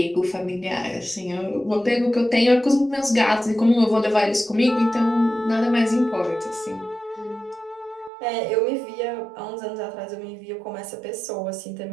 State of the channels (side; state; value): left; drops out; at 8.1 s